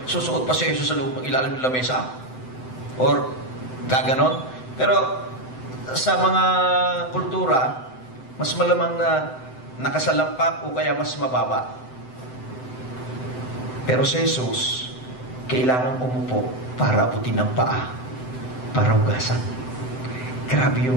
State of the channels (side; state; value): right; late; 7.8 ms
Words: susuot pa si Jesus sa loob ng ilalim ng lamesa. Or gaganon. Pero sa mga kultura, mas malamang na nakasalampak o kaya mas mababa. Pero si Jesus, kailangan umupo para abutin ang paa, para hugasan. Grabe